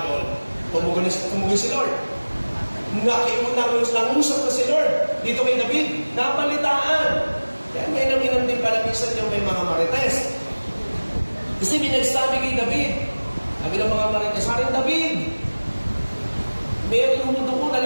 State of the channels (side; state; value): both; inverted; correlation -1.00